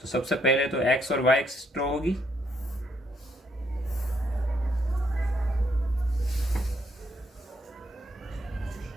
तो सबसे पहले तो एक्स और वाई एक्सिस ड्रॉ होगी।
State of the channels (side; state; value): both; normal; correlation 0.73